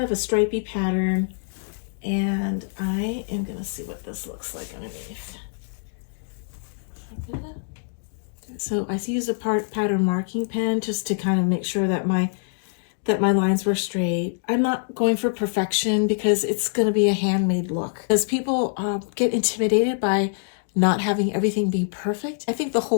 of a stripy pattern, and I am gonna see what this looks like underneath. So I use a pattern marking pen just to kind of make sure that my lines were straight. I'm not going for perfection because it's going to be a handmade look. Because people get intimidated by not having everything be perfect. I think the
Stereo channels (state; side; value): silent; right; digital silence